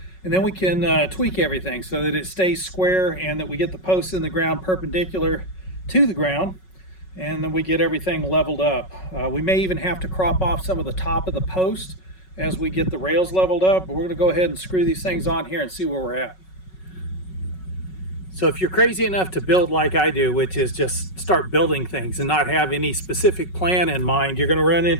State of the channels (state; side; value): late; right; 5.4 ms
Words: And then we can tweak everything so that it stays square and that we get the posts in the ground perpendicular to the ground. And then we get everything leveled up. We may even have to crop off some of the top of the post as we get the rails leveled up. But we're going to go ahead and screw these things on here and see where we're at. So if you're crazy enough to build like I do, which is just start building things and not have any specific plan in mind, you're going to run